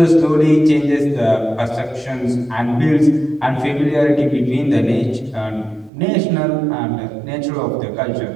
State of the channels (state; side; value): drops out; left; at 5.9 s